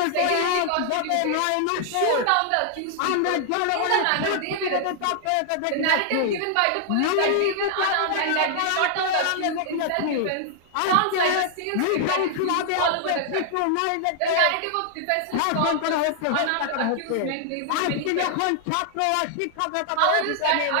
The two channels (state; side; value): different; both; correlation -0.01